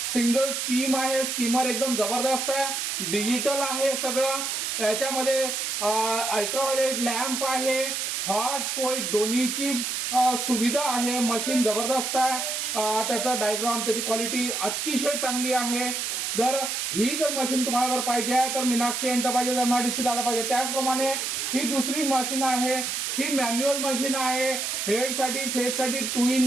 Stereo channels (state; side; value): noise; right; hiss, 2 dB below the sound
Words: सिंगल स्टीम आहे। स्टीमर एकदम जबरदस्त आहे, डिजिटल आहे सगळं। याच्यामध्ये अल्ट्राव्हायोलेट लॅम्प आहे, हॉट कोल्ड दोन्हीची सुविधा आहे। मशीन जबरदस्त आहे, त्याचा डायग्राम, त्याची क्वालिटी अतिशय चांगली आहे। जर मशीन तुम्हाला जर पाहिजे आहे तर मीनाक्षी एंटरप्राइजेस MIDC आला पाहिजे। त्याचप्रमाणे ही दुसरी मशीन आहे, ही मॅन्युअल मशीन आहे, हेडसाठी फेससाठी 2